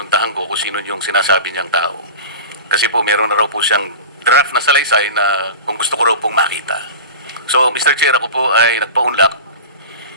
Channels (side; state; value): both; inverted; correlation -0.31